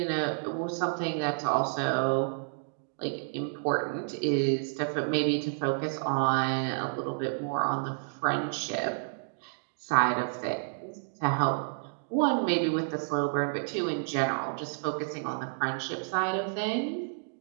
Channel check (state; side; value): silent; left; digital silence